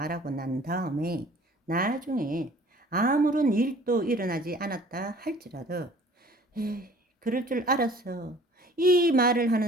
난 다음에 나중에 아무런 일도 일어나지 않았다 할지라도 에이, 그럴 줄 알았어. 이 말을 하는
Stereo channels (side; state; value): both; normal; correlation 0.51